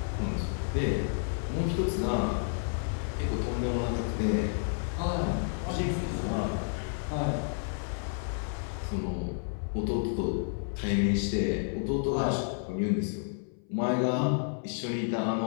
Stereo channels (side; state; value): right; silent; 57 dB below the other